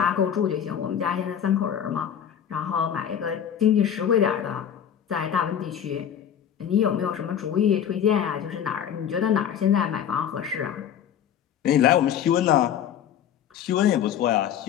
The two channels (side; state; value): right; quieter; 9.2 dB